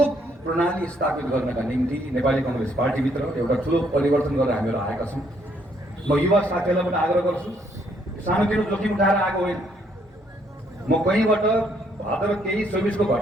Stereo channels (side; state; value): both; normal; correlation 0.69